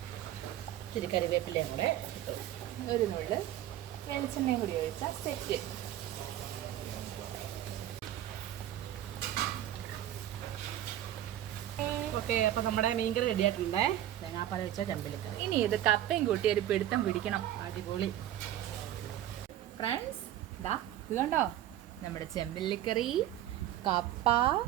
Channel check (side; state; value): left; quieter; 12.5 dB